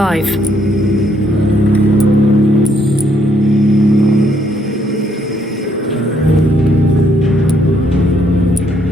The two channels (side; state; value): both; normal; correlation 0.71